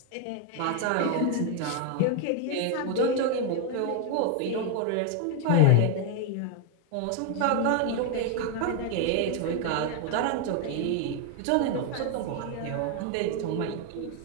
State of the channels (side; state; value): both; different; correlation 0.01